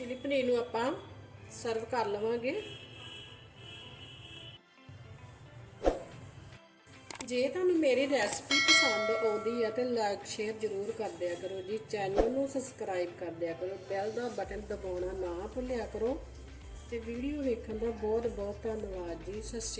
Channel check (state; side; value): identical; both; correlation 1.00